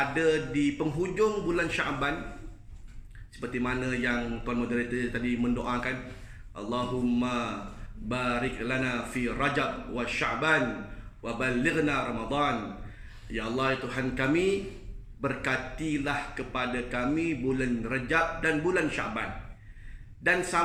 di penghujung bulan Syaban. Seperti mana yang Tuan Moderator tadi mendoakan, Allahumma barik lana fi Rajab wa Sya'ban wa balighna Ramadan. Ya Allah, Tuhan kami, berkatilah kepada kami bulan Rajab dan bulan Sya'ban, dan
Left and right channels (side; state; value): both; identical; correlation 1.00